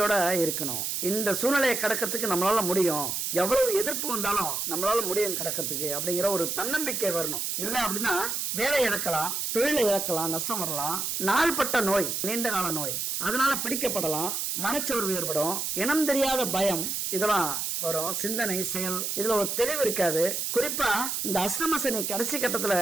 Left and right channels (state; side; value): noise; right; hiss, 1 dB below the sound